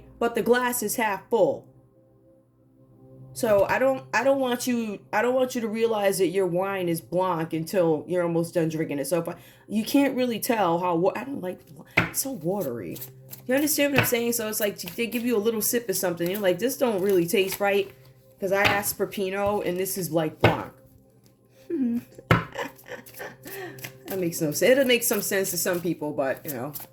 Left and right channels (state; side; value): identical; both; correlation 1.00